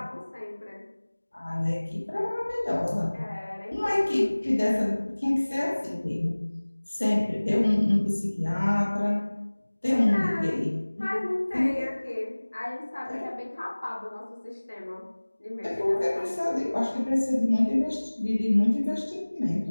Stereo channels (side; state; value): both; inverted; correlation -1.00